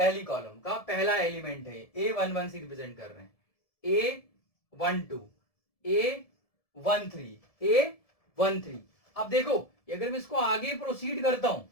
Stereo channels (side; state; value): right; late; 1.7 ms